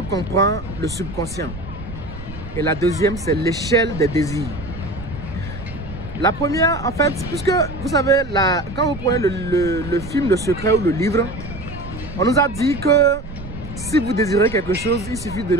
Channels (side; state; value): right; noise; rumble, 13 dB below the sound